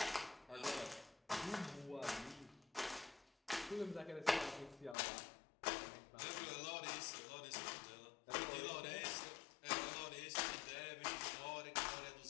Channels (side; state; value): right; drops out; at 5.0 s